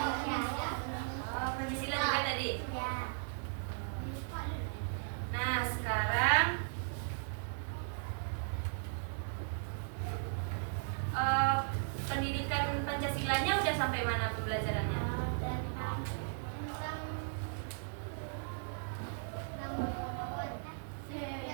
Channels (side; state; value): left; silent; digital silence